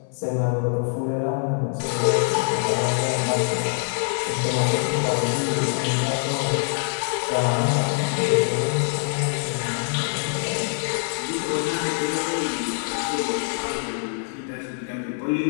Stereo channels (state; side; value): silent; right; 62 dB below the other